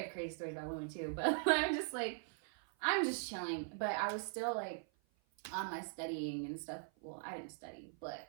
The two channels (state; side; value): silent; left; 50 dB below the other